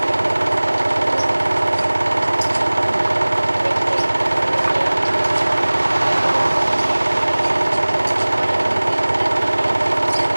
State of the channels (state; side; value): inverted; both; correlation -1.00